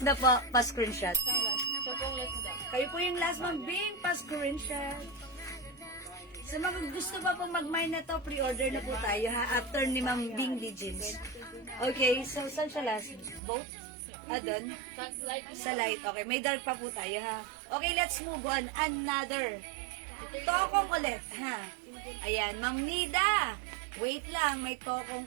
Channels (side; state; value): left; drops out; at 13.4 s